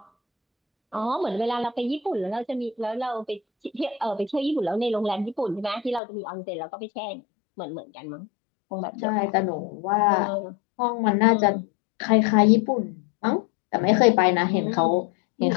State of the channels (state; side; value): drops out; right; at 6.0 s